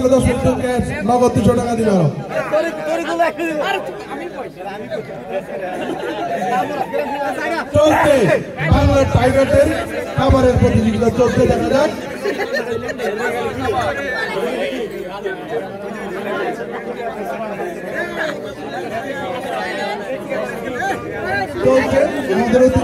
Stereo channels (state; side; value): identical; both; correlation 1.00